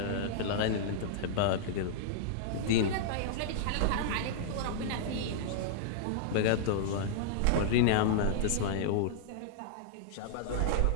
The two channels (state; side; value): different; both; correlation -0.01